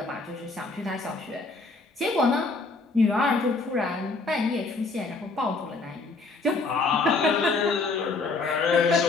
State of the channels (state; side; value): quieter; right; 3.7 dB